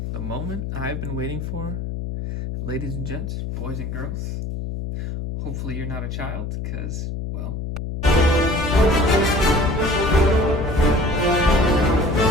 the moment I've been waiting for. Ladies and gents, boys and girls, hopefully you're not a child, because, well...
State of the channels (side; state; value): left; noise; hum, 5 dB below the sound